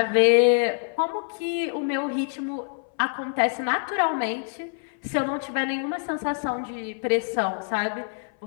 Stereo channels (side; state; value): right; silent; 61 dB below the other